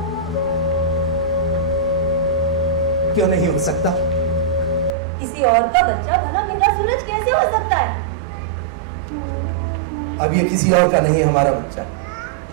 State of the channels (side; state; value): left; drops out; at 4.9 s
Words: क्यों नहीं हो सकता? किसी और का बच्चा भला मेरा सूरज कैसे हो सकता है? अब ये किसी और का नहीं है, हमारा बच्चा।